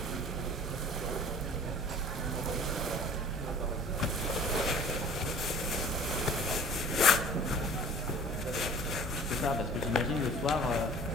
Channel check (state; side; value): normal; both; correlation 0.47